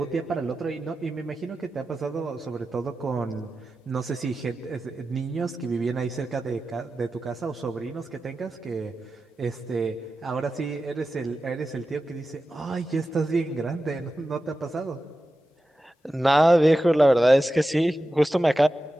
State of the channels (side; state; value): both; normal; correlation 0.93